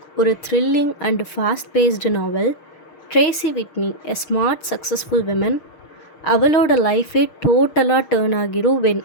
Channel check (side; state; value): right; late; 6.4 ms